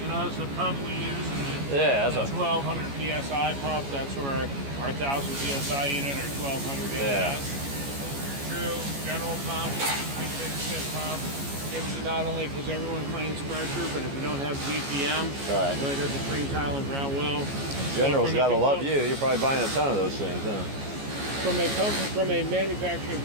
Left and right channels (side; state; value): left; late; 14 ms